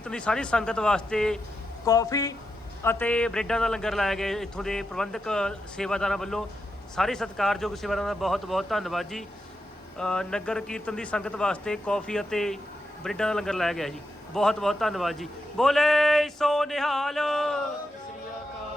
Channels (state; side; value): normal; both; correlation 0.86